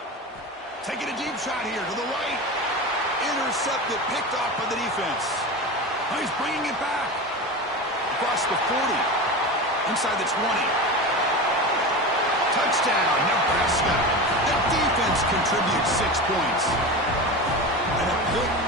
Taking a deep shot here to the right. Intercepted, picked off by the defense. Oh, he's bringing it back. Across the 40. Inside the 20. Touchdown, Nebraska. The defense contributes 6 points. And a pick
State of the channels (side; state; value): both; normal; correlation 0.26